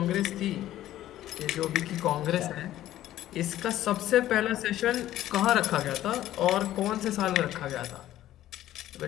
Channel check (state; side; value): quieter; right; 13.5 dB